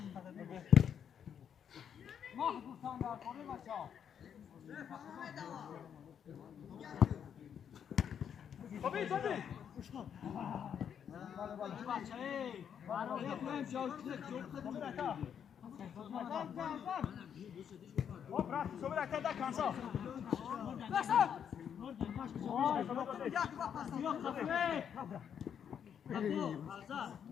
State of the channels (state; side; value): quieter; right; 8.2 dB